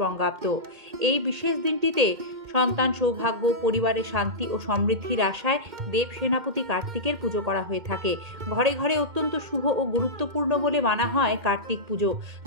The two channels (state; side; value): late; left; 2.1 ms